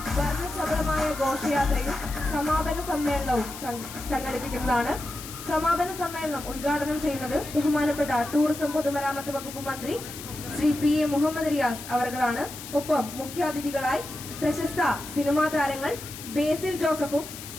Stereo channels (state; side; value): noise; left; hiss, 12 dB below the sound